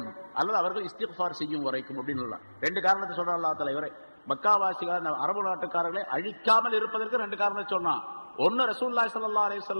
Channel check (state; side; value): inverted; both; correlation -1.00